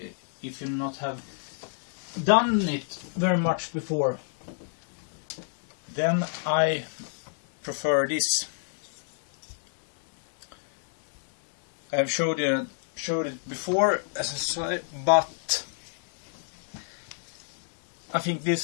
if you not have done it very much before, then I prefer this. I've showed it before, as I said, but I think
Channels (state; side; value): silent; right; digital silence